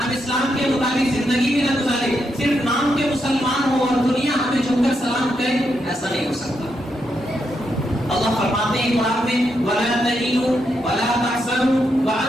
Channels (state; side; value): normal; both; correlation 0.81